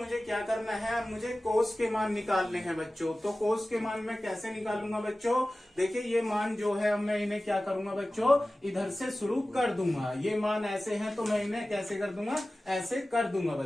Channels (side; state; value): both; normal; correlation 0.96